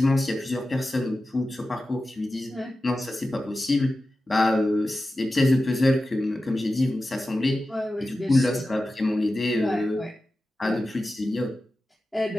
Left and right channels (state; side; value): normal; both; correlation 0.94